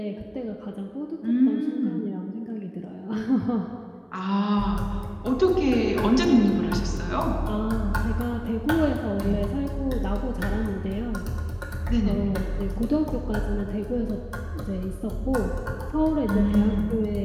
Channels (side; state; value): both; identical; correlation 1.00